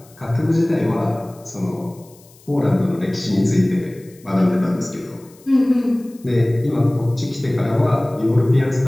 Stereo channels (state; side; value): noise; left; hiss, 27 dB below the sound